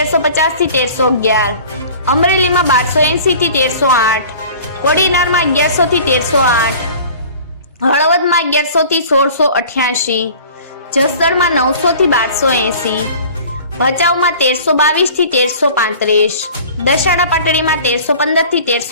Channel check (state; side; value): inverted; both; correlation -0.44